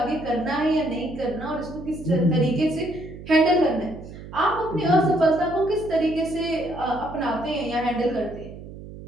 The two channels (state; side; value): noise; right; hum, 14 dB below the sound